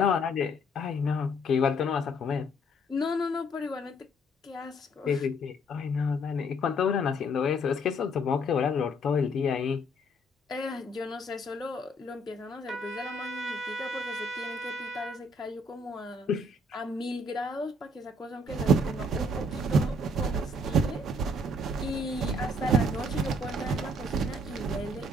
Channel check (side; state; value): both; normal; correlation 0.65